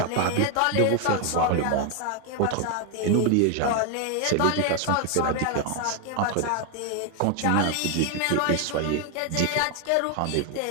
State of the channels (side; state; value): both; different; correlation 0.01